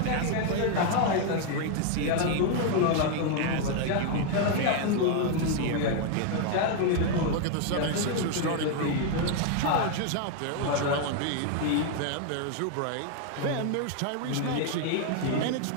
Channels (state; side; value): different; both; correlation 0.00